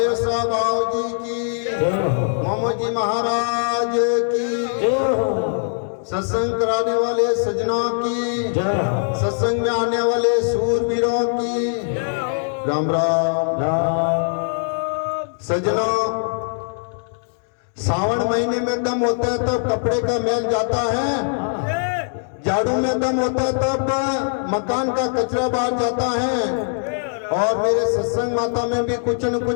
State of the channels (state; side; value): silent; right; digital silence